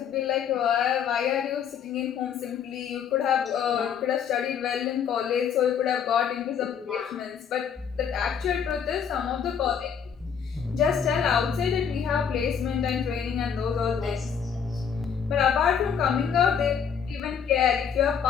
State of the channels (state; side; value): quieter; right; 7.4 dB